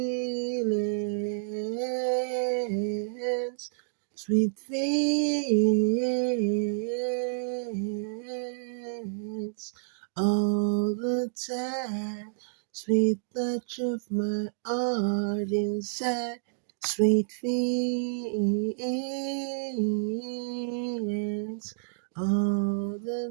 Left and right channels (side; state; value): left; silent; digital silence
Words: sweet feelings, all the time. Sweet touch of my heart inside, sweet feelings, all